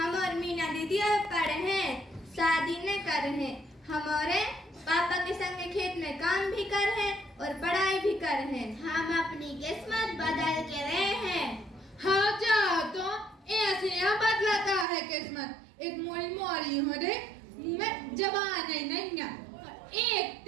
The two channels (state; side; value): drops out; left; at 14.9 s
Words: और मीना दीदी अब पढ़े हैं, शादी न कर हैं। हमारे पापा के संग खेत में काम भी कर हैं और पढ़ाई भी कर हैं। हम अपनी किस्मत बदल के रहे हैं। हाँ जाओ तो ऐसे यहाँ बदलाता है किस्मत। एक मोरी मोरी हो दे मुँह में जबान नहीं, एक